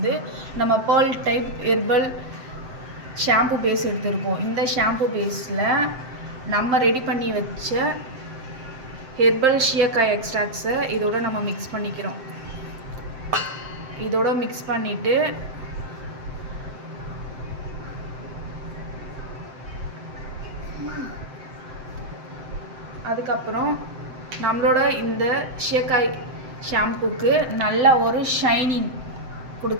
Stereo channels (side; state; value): left; late; 7.7 ms